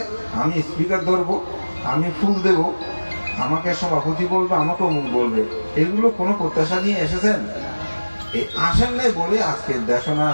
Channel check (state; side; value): inverted; both; correlation -1.00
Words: আমি স্পিকার ধরবো, আমি ফুল দেব, আমাকে সভাপতি বলবে, আমাকে অমুক বলবে। এগুলো কোনো প্রত্যাশা নিয়ে এসেছেন? এই আসেন নাই বলে আজকে দেশনা